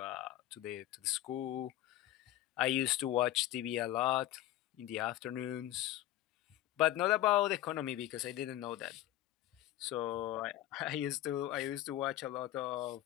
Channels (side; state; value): right; quieter; 14.1 dB